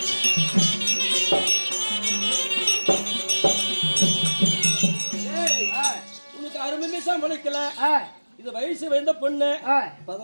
இது வயசு வந்த பொண்ணு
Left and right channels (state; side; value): inverted; both; correlation -1.00